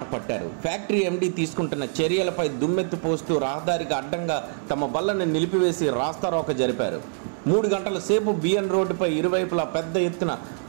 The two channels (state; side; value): silent; left; digital silence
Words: పట్టారు. ఫ్యాక్టరీ ఎండీ తీసుకుంటున్న చర్యలపై దుమ్మెత్తి పోస్తూ రహదారికి అడ్డంగా తమ బళ్లను నిలిపివేసి రాస్తారోక జరిపారు. 3 గంటల సేపు బిఎన్ రోడ్డుపై ఇరువైపులా పెద్ద ఎత్తున